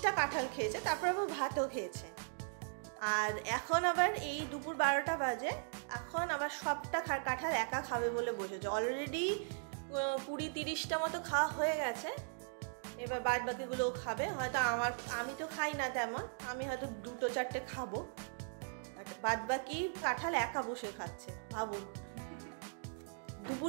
কাঁঠাল খেয়েছে, তারপর আবার ভাতও খেয়েছে। আর এখন আবার এই দুপুর 12টা বাজে, এখন আবার সবটা কাঁঠাল একা খাবে বলে বসেছে। অলরেডি 20-30টা মতো খাওয়া হয়ে গেছে, এবার বাদ বাকিগুলোও খাবে। হয়তো আমি তো খাই না তেমন, আমি হয়তো 2-4টে খাবো, বাদ বাকি কাঁঠাল একা বসে খাচ্ছে। ভাবুন,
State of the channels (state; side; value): silent; left; digital silence